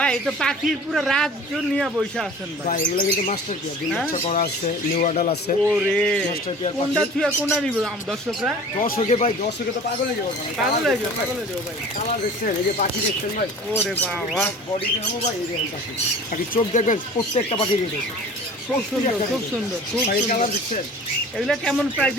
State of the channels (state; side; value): normal; both; correlation 0.43